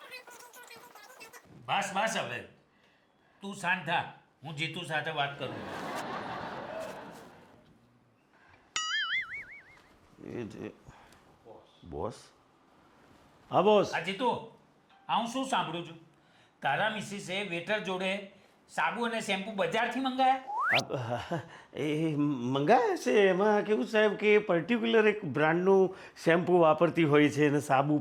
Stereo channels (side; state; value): both; identical; correlation 1.00